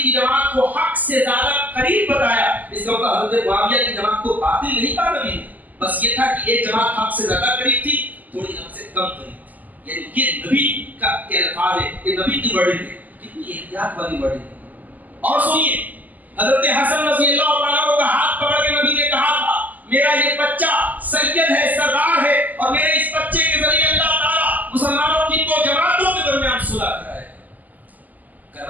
کی جماعت کو حق سے زیادہ قریب بتایا. اس کا مطلب حضرت معاویہ کی جماعت کو باطل نہیں کہا نبی نے, بس یہ تھا کہ ایک جماعت حق سے زیادہ قریب تھی, تھوڑی حق سے کم قریب تھی. یعنی یہ نبی کا الفاظ ہے, یہ نبی کی ورڈنگ ہے. کتنی احتیاط والی ورڈنگ ہے. اور سنیے, حضرت حسن رضی اللہ عنہ کا ہاتھ پکڑ کے نبی نے کہا تھا میرا یہ بچہ سید ہے, سردار ہے, اور میرے اس بچے کے ذریعے اللہ تعالیٰ مسلمانوں کی دو جماعتوں کے درمیان صلح کرائے.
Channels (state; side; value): late; left; 0.081 ms